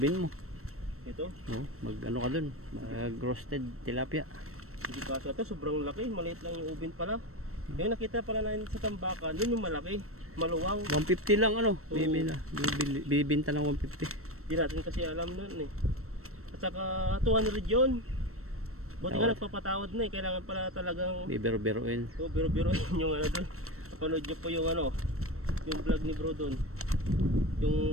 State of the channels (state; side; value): late; left; 0.63 ms